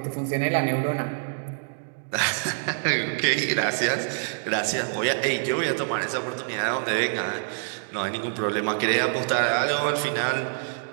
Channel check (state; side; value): silent; left; digital silence